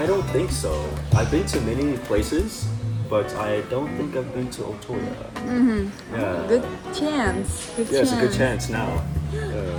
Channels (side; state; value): both; identical; correlation 1.00